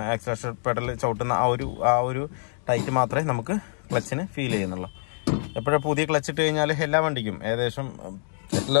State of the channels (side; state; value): right; silent; digital silence